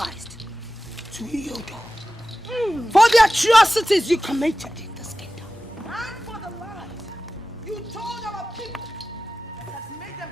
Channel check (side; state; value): both; normal; correlation 0.95